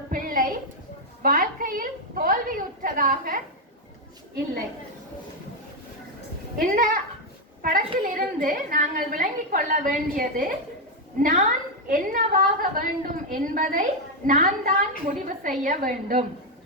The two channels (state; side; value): normal; both; correlation 0.03